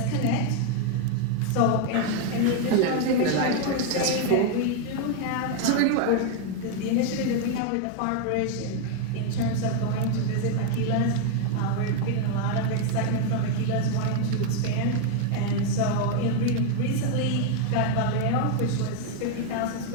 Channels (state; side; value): different; both; correlation 0.01